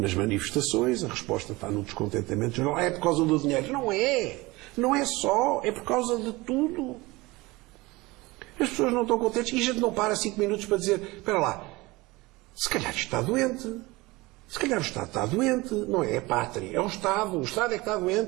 manifestações, a resposta está no descontentamento geral. É por causa do dinheiro. Não é. Não é só. É por causa de tudo. As pessoas não estão contentes e a gente não para 5 minutos para dizer: espera lá, se calhar isto está doente. Se calhar o Estado está doente. Não é a pátria, é o Estado. O Estado é que está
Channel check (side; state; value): left; quieter; 22.0 dB